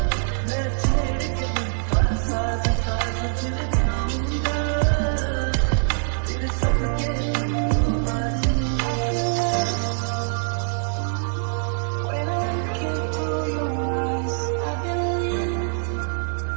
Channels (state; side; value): silent; left; digital silence